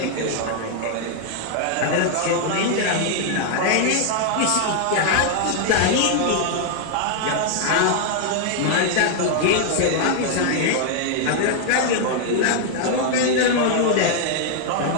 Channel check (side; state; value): both; different; correlation 0.00